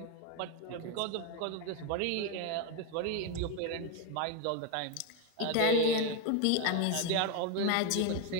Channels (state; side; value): different; both; correlation 0.02